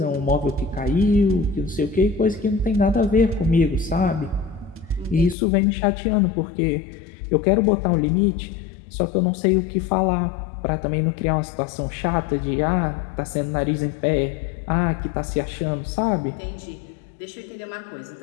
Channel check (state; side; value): drops out; right; at 5.4 s